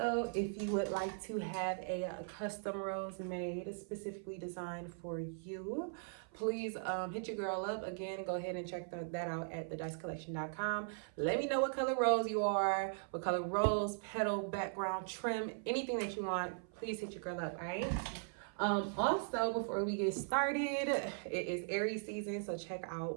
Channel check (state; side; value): silent; left; 52 dB below the other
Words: if you would like to have a custom rose made specifically designed for you, please hit your girl up. Again, go ahead and check that out at thedicecollection.com. Let me know what color rose you are, what color rose, petal, background, trim, anything that you want. Please hit your girl up, all right? Also, before we get started, it is Aries season, so check